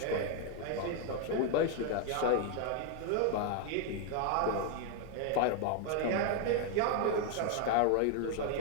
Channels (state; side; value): different; both; correlation 0.00